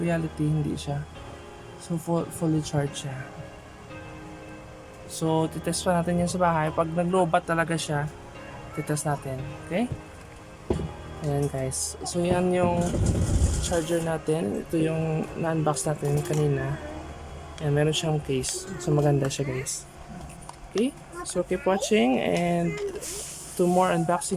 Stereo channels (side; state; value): both; identical; correlation 1.00